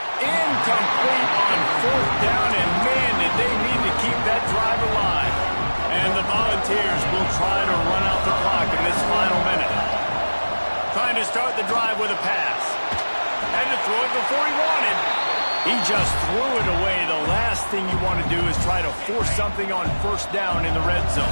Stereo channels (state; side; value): inverted; both; correlation -1.00